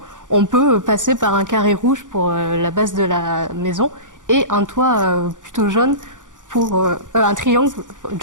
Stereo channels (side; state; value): left; late; 0.87 ms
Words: on peut passer par un carré rouge pour la base de la maison et un toit plutôt jaune pour un triangle